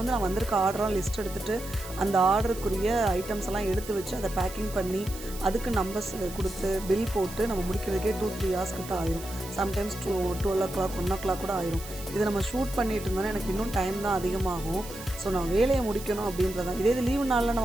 நான் வந்திருக்க ஆர்டராக லிஸ்ட் எடுத்துகிட்டு அந்த ஆர்டருக்குரிய ஐட்டம்ஸ் எல்லாம் எடுத்து வச்சு அதை பேக்கிங் பண்ணி அதுக்கு நம்பர்ஸ் கொடுத்து பில் போட்டு நம்ம முடிக்கிறதுக்கே 2-3 hours கிட்ட ஆயிரும். சம்டைம்ஸ் 12 o'clock 1 o'clock கூட ஆயிரும். இதை நம்ம ஷூட் பண்ணிட்டு இருந்தோன்னா எனக்கு இன்னும் டைம் தான் அதிகமாகும். ஸோ நான் வேலையை முடிக்கணும் அப்படின்றதான். இதே இது லீவு நாளில்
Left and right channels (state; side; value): noise; right; hiss, 14 dB below the sound